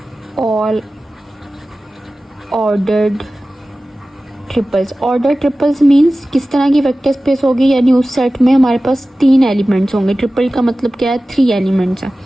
all ordered triples. Order triples means किस तरह की वेक्टर स्पेस होगी, यानी उस सेट में हमारे पास 3 एलिमेंट्स होंगे। ट्रिपल का मतलब क्या है, 3 एलिमेंट्स हैं।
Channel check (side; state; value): both; normal; correlation 0.96